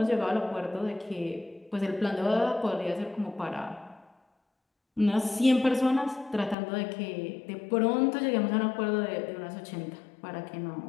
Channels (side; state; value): right; drops out; at 6.6 s